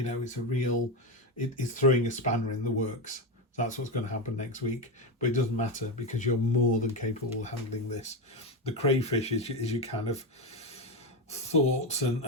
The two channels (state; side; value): normal; both; correlation 0.13